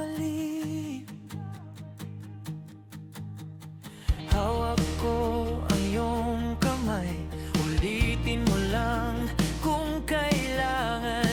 Hawak ko ang iyong kamay, ulitin mo lang kung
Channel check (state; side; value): identical; both; correlation 1.00